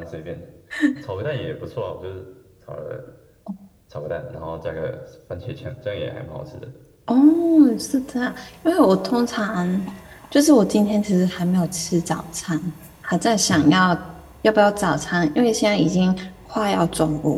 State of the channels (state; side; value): identical; both; correlation 1.00